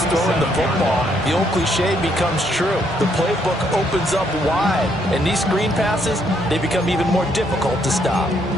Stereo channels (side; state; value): both; normal; correlation 0.72